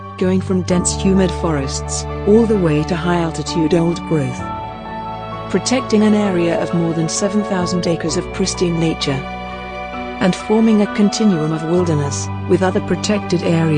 going from dense humid forests all the way to high-altitude old-growth, protecting an area of more than 7,000 acres of pristine nature, and forming a continuum of wilderness with other protected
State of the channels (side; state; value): both; identical; correlation 1.00